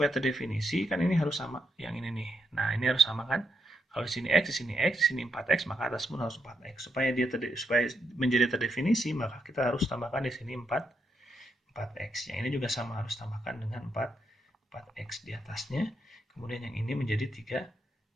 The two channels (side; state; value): both; normal; correlation 0.80